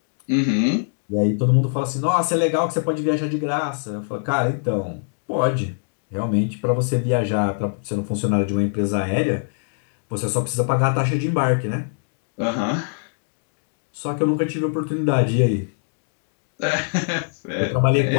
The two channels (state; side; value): silent; right; digital silence